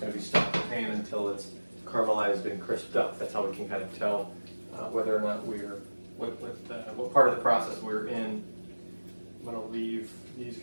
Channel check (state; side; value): inverted; both; correlation -1.00